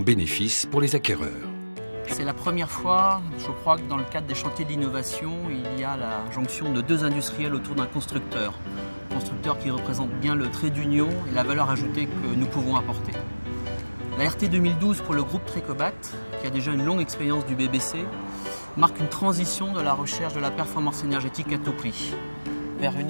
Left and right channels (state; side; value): inverted; both; correlation -1.00